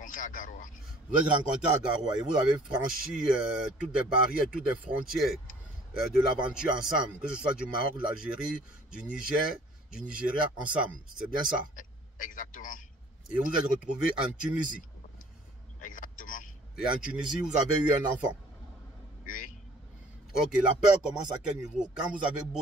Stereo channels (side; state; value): both; normal; correlation 0.53